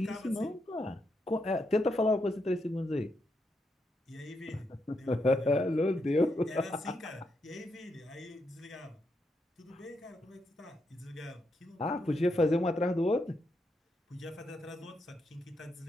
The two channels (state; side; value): normal; both; correlation 0.81